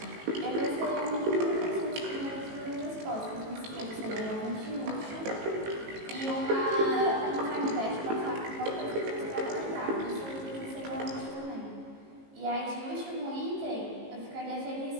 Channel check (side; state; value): left; late; 18 ms